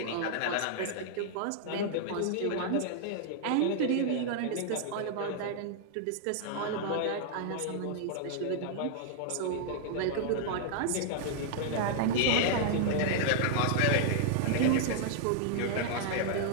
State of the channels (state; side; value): different; both; correlation -0.01